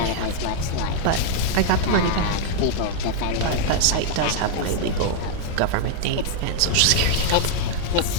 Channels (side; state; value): both; different; correlation 0.00